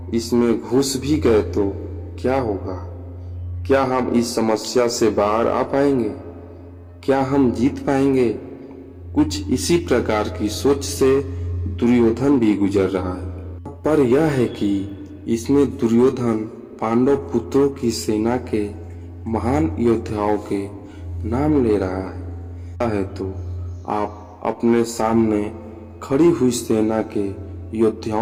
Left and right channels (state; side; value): identical; both; correlation 1.00